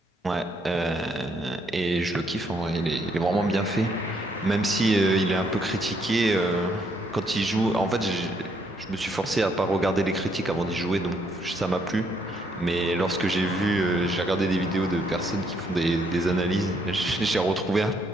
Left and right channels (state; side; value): normal; both; correlation 0.71